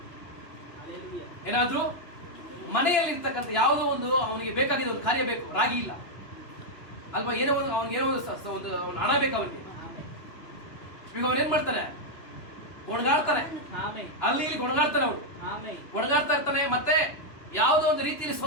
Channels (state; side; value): late; right; 2.9 ms